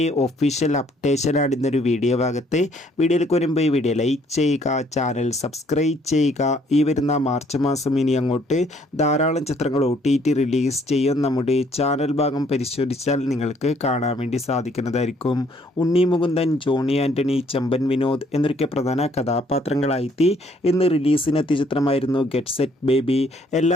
ഒഫീഷ്യൽ അപ്ഡേഷനാണ് ഇന്നൊരു വീഡിയോ ഭാഗത്ത്. വീഡിയോയിലേക്ക് വരുമ്പോൾ ഈ വീഡിയോ ലൈക്ക് ചെയ്യുക, ചാനൽ സബ്സ്ക്രൈബ് ചെയ്യുക. ഈ വരുന്ന മാർച്ച് മാസം ഇനി അങ്ങോട്ട് ധാരാളം ചിത്രങ്ങൾ OTT റിലീസ് ചെയ്യും. നമ്മുടെ ചാനൽ ഭാഗം പരിശോധിച്ചാൽ നിങ്ങൾക്ക് കാണാൻ വേണ്ടി സാധിക്കുന്നതായിരിക്കും. ഉണ്ണി മുകുന്ദൻ, ജോണി ആൻ്റണി, ചെമ്പൻ വിനോദ് എന്നൊക്കെ പ്രധാന കഥാപാത്രങ്ങളായി ഇന്ന് റിലീസിനെത്തിയ ചിത്രമായിരുന്നു ഗെറ്റ് സെറ്റ് ബേബി. എല്ലാ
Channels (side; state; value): both; normal; correlation 0.64